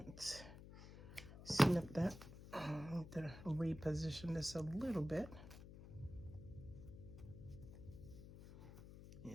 let's snip that. I need to reposition this a little bit.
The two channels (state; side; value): noise; left; hum, 14 dB below the sound